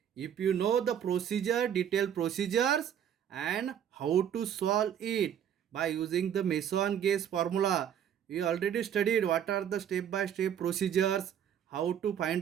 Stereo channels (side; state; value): left; quieter; 9.2 dB